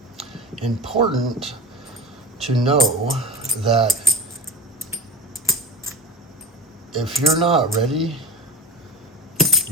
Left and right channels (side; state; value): both; normal; correlation 0.31